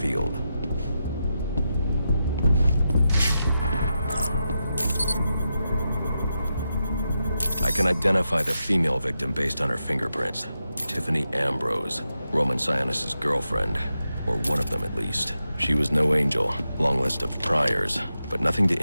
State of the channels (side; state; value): both; inverted; correlation -0.87